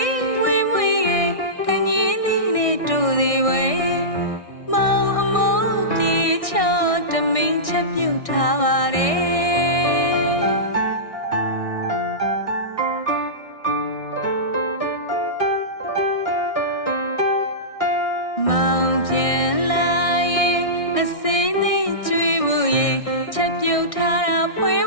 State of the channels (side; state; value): right; late; 1.6 ms